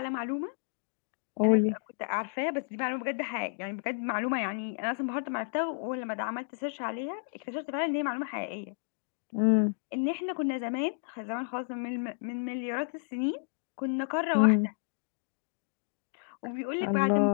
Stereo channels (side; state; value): right; silent; digital silence